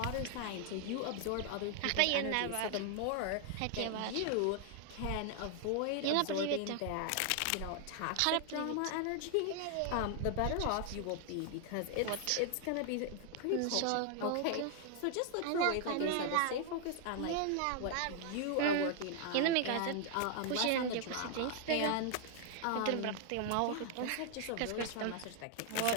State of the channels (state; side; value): different; both; correlation 0.00